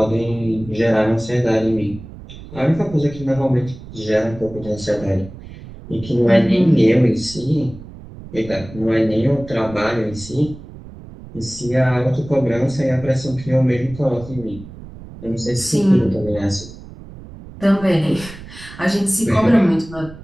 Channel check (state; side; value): noise; right; rumble, 16 dB below the sound